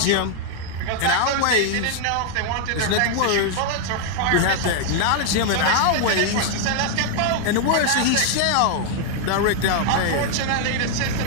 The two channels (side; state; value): both; different; correlation -0.01